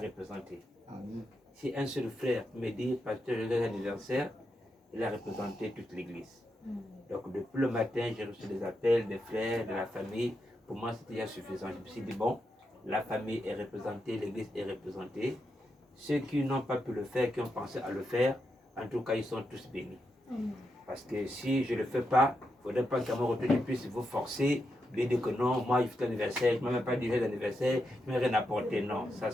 Si un seul frère me dit pasteur joyeux anniversaire, il a représenté toute l'église. Donc depuis le matin, j'ai reçu des appels des frères, de la famille. Pour moi, c'était déjà suffisant. Je me suis dit, bon, la famille est représentée, l'église est représentée. Ceux qui n'ont pas pu le faire, qui ont pensé à le faire, en tout cas, ils sont tous bénis. Parce que si je ne le fais pas, il ne faudrait pas qu'à mon retour, je puisse vous forcer, lui dire que non, moi, je fais l'anniversaire, je ne m'ai même pas dit d'anniversaire, je ne m'ai rien apporté. Non, ça,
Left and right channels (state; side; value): normal; both; correlation 0.84